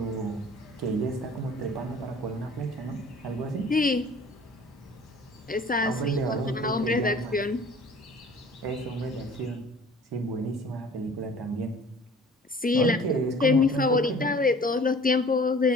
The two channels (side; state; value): both; normal; correlation 0.49